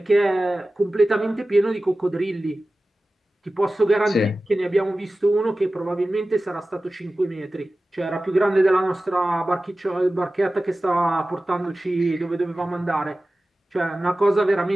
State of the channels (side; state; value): both; normal; correlation 0.96